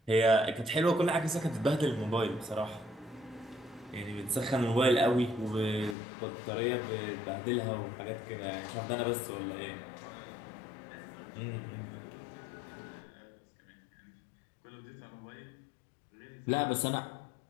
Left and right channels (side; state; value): right; drops out; at 6.0 s